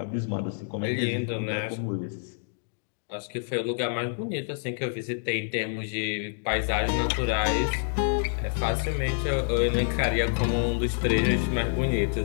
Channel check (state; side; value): silent; right; digital silence